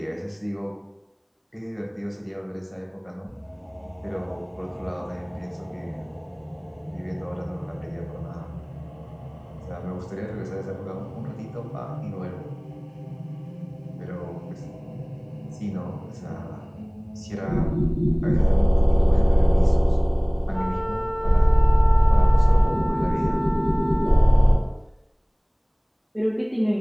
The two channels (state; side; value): identical; both; correlation 1.00